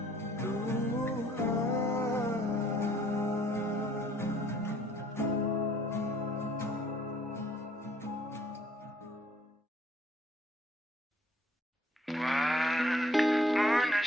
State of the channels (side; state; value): both; normal; correlation 0.61